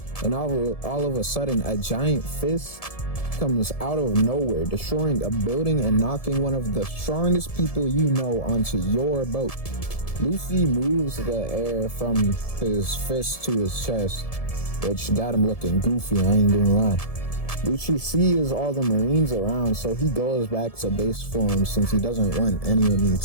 and all of a sudden a giant fist comes out of nowhere, destroying a building and knocking one of the strongest people you know onto your boat. Luffy moves the air from his fist to his chest, which got him looking goofy, I ain't gonna lie. Lucci sees all the Marines around, so he goes back to base form since he doesn't want anyone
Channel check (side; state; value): right; late; 1.7 ms